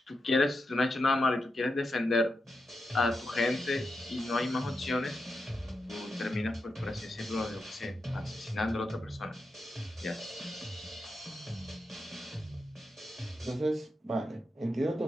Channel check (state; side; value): normal; both; correlation 0.87